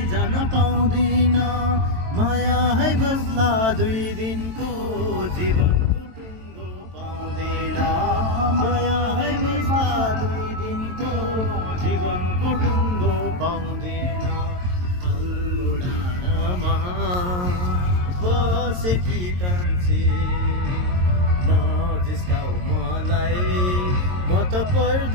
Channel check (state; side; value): late; left; 22 ms